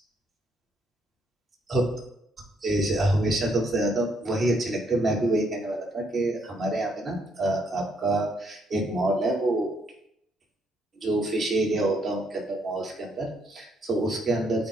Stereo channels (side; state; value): both; normal; correlation 0.72